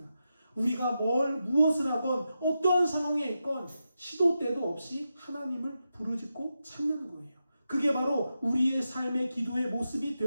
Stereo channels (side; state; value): both; inverted; correlation -0.88